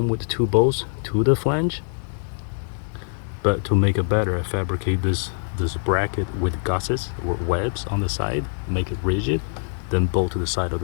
with 2 bolts to the flange, but to make it better, I fabricate this bracket with gussets or webs on the side, make it rigid, then bolt to the side of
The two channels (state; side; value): silent; right; 63 dB below the other